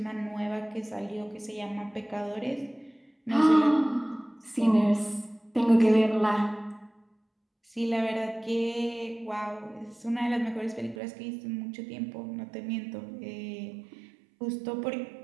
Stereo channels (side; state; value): left; drops out; at 11.0 s